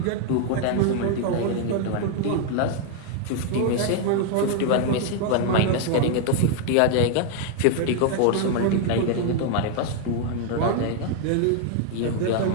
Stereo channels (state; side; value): different; both; correlation 0.00